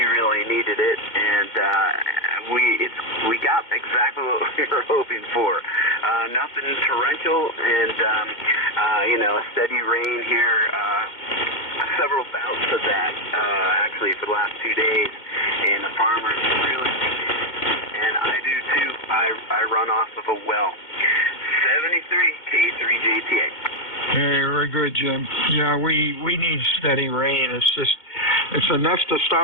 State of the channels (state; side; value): late; right; 2.1 ms